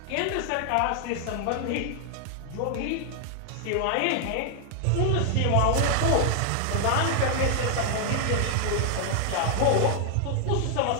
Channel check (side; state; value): both; different; correlation 0.00